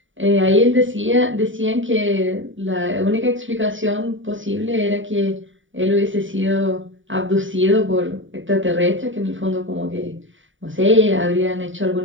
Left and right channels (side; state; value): left; late; 0.56 ms